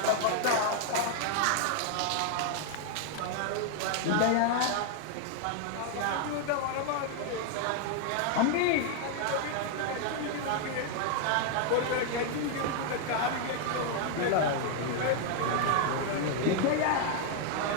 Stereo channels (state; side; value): different; both; correlation 0.00